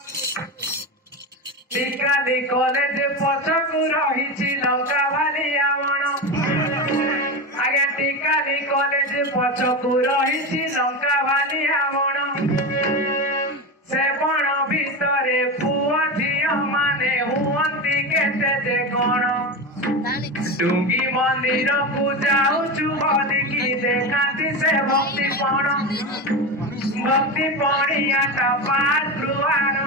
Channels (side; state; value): both; normal; correlation 0.20